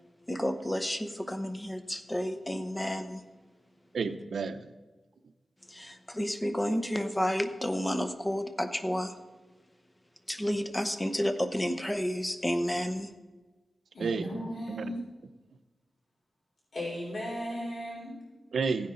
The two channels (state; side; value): normal; both; correlation 0.95